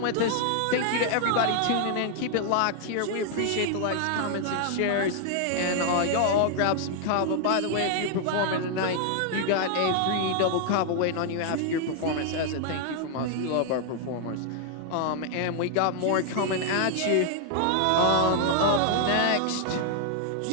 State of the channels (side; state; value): both; different; correlation 0.00